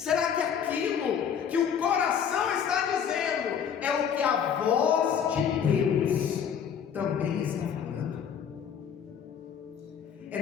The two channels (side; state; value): right; quieter; 7.9 dB